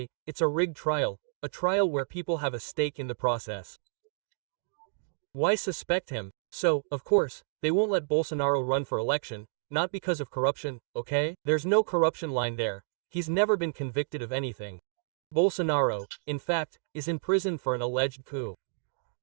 it's a rigged trial, a trial where people have a stake in the process. Why suspect him? So, of course, they won't let Bolsonaro run for election, not because of corruption, okay? There's no corruption line there. He's never been convicted of anything. Bolsonaro, in fact, is in prison for an alleged coup.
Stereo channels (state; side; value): silent; left; digital silence